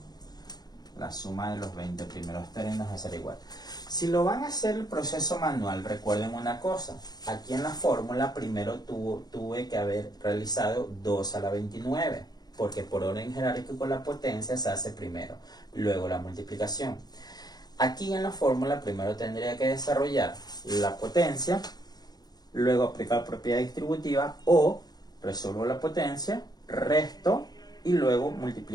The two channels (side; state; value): right; late; 0.19 ms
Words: La suma de los 20 primeros términos va a ser igual. Si lo van a hacer el proceso manual, recuerden una cosa. Aquí en la fórmula primero tuve que haber realizado 2 a la 29. Porque por orden jerárquico la potencia se hace primero, luego la multiplicación. Aquí en la fórmula primero tendría que desarrollar la potencia, luego aplicar propiedad distributiva, o resuelvo la potencia, resto y luego